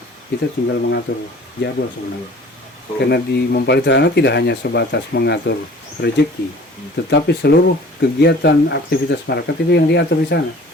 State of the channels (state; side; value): normal; both; correlation 0.47